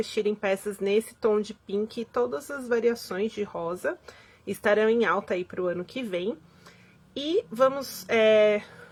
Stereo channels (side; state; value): both; identical; correlation 1.00